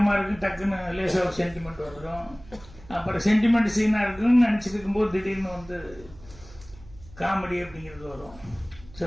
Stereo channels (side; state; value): right; noise; hum, 21 dB below the sound